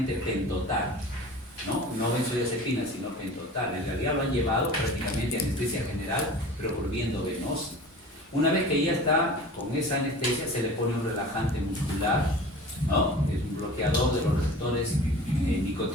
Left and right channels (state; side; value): normal; both; correlation 0.40